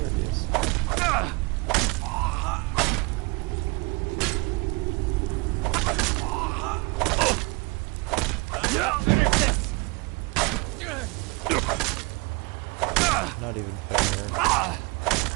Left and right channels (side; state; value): left; quieter; 27.7 dB